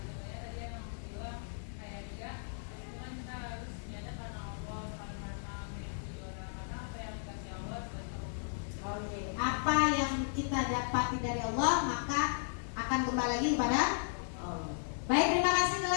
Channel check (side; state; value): right; silent; digital silence